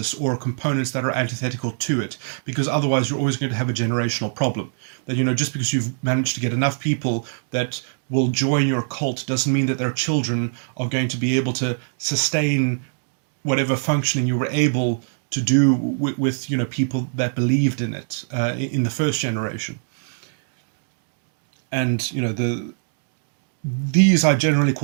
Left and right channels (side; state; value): left; silent; digital silence